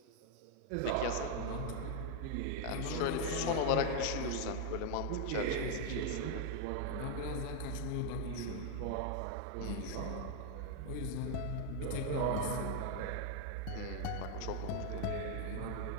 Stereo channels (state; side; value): different; both; correlation 0.00